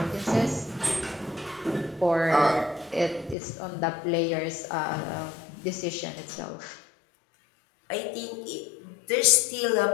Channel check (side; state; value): right; drops out; at 3.4 s